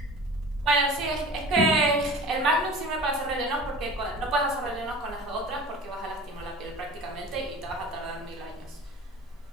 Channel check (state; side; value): normal; both; correlation 0.39